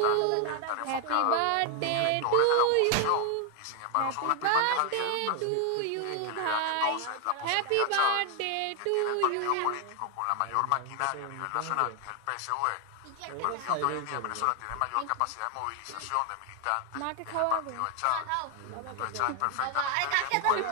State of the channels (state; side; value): different; both; correlation 0.00